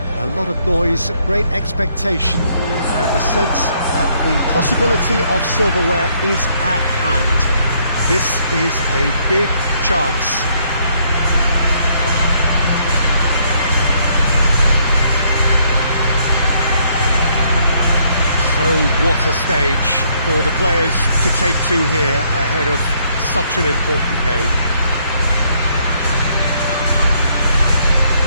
A lot of noise, great expectation and the sense that the possibility of silverware is at hand. This is a big chance. So what a stage for the players to take to here ahead of such an important game.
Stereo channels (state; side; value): inverted; both; correlation -0.69